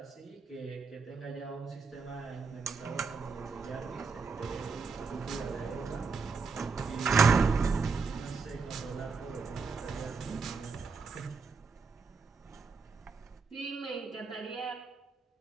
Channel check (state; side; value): quieter; left; 4.9 dB